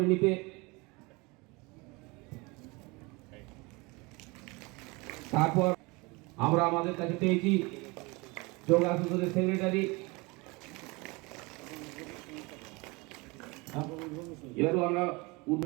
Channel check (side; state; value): left; quieter; 26.0 dB